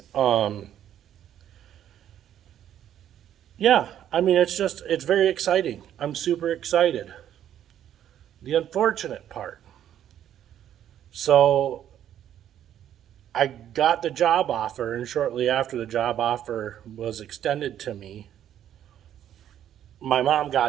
Yeah, I mean, it's very exciting. I'm super excited. The unfortunate part. So I got the job offer, and shortly after the job offer was extended to me, my mom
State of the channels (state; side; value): quieter; left; 10.7 dB